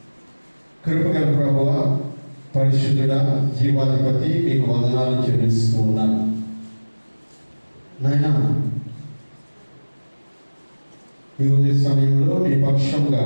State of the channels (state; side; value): inverted; both; correlation -1.00